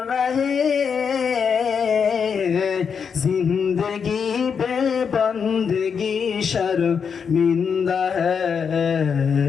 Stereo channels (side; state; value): right; quieter; 6.5 dB